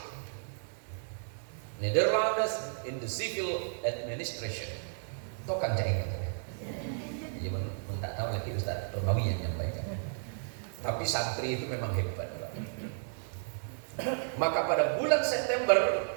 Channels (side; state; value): left; silent; digital silence